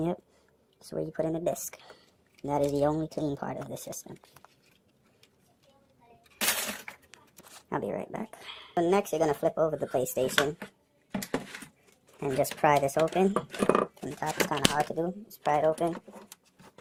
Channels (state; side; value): identical; both; correlation 1.00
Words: that's where you put in the disc. That is the only clean part of the system. I'll be right back. So next, you're going to flip over the PlayStation and just pry this open. From the top, it's kind of hard to do. Just pry it open,